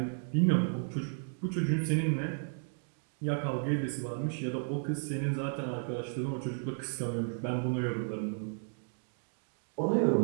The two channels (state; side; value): silent; left; 55 dB below the other